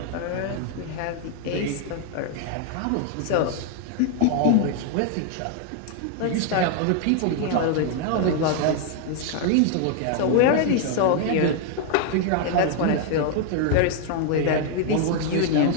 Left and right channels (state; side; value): different; both; correlation 0.00